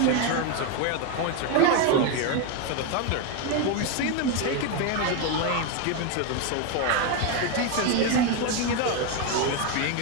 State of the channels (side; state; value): both; different; correlation 0.02